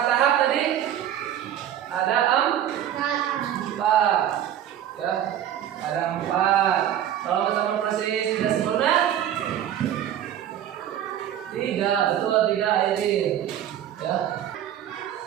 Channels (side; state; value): left; quieter; 10.8 dB